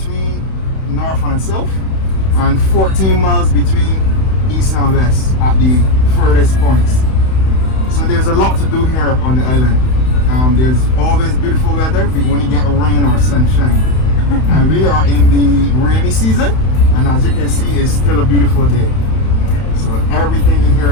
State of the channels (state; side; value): late; right; 31 ms